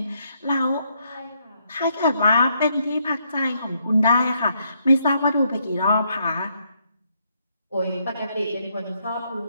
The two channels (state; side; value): inverted; both; correlation -0.74